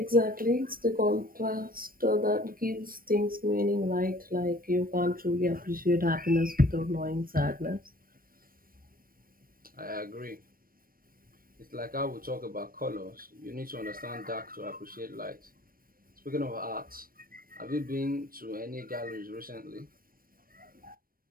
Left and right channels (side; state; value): left; late; 0.41 ms